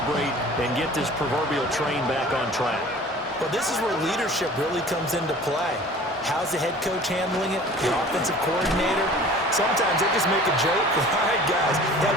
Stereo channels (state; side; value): normal; both; correlation 0.45